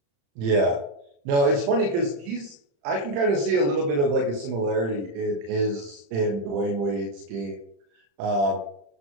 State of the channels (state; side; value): late; left; 35 ms